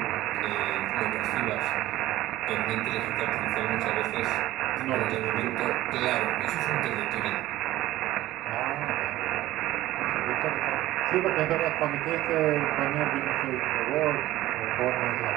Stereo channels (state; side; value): quieter; left; 15.8 dB